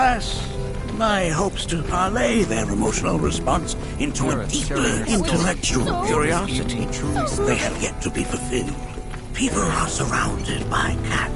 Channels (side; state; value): both; identical; correlation 1.00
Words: my hopes to parlay their emotional response into a deeply intellectual curiosity, they have yet to be fulfilled. People are surrounded by